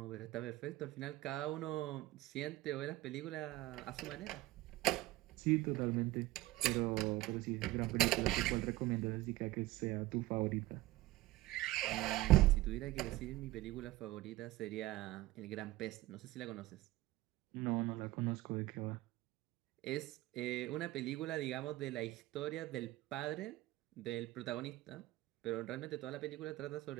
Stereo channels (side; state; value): left; quieter; 17.8 dB